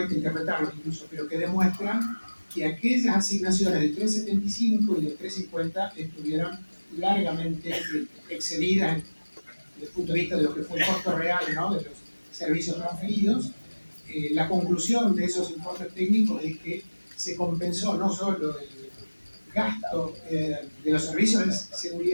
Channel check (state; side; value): inverted; both; correlation -1.00